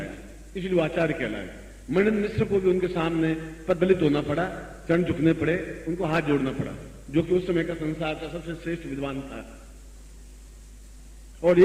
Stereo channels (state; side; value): identical; both; correlation 1.00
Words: इसलिए वो आचार्य कहलाए। मणिन्द्र मिश्र को भी उनके सामने पददलित होना पड़ा, चरण झुकने पड़े, उनको हाथ जोड़ना पड़ा, जो कि उस समय का संसार का सबसे श्रेष्ठ विद्वान था। और